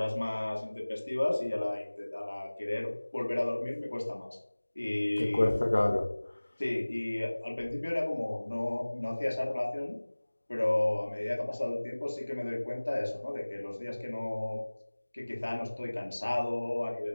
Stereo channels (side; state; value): both; inverted; correlation -1.00